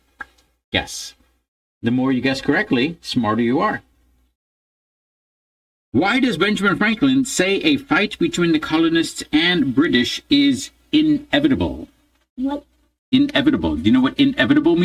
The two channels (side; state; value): both; identical; correlation 1.00